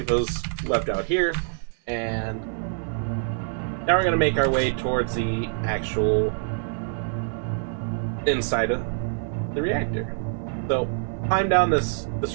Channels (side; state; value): left; silent; 61 dB below the other